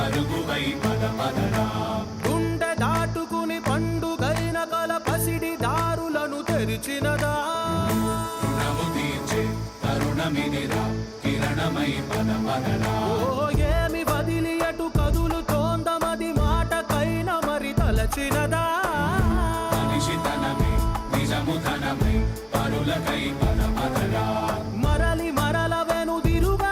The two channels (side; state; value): both; identical; correlation 1.00